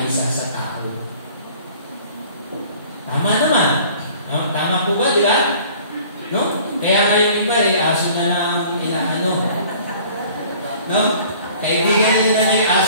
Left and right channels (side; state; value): both; inverted; correlation -0.50